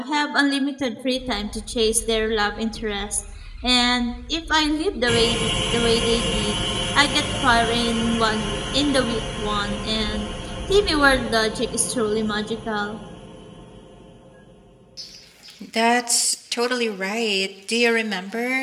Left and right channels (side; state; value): both; identical; correlation 1.00